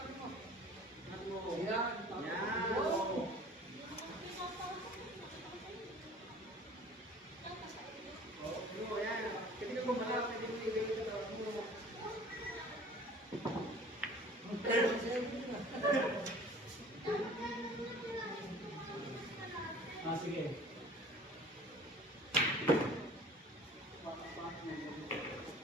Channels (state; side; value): normal; both; correlation 0.47